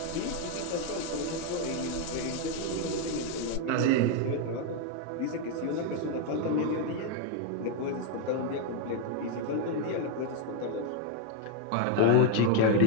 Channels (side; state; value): both; different; correlation 0.01